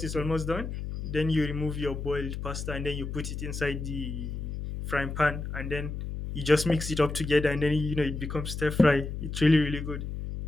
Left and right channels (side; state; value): left; noise; hum, 6 dB below the sound